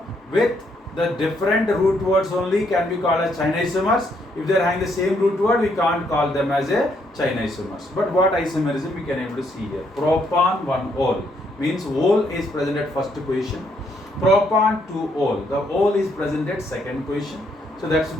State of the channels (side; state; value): both; normal; correlation 0.73